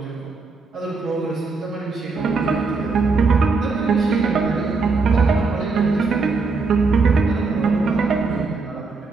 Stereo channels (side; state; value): left; quieter; 4.2 dB